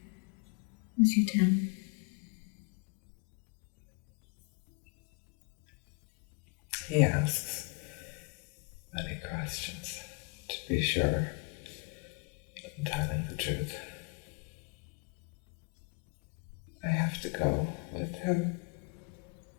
as you tell him? He asks many questions to be sure that I'm telling the truth. I have to go with him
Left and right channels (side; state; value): right; quieter; 31.3 dB